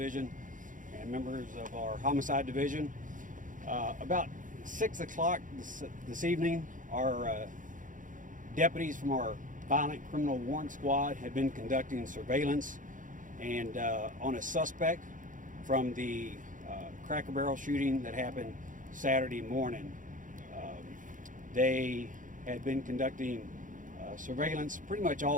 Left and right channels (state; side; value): late; left; 0.38 ms